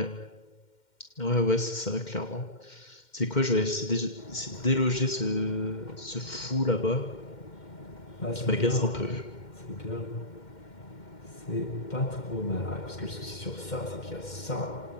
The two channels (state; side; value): late; right; 2.1 ms